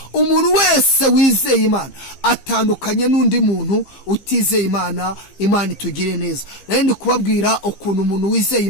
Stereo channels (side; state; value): right; late; 15 ms